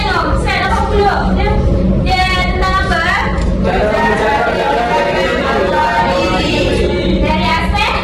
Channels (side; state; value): both; identical; correlation 1.00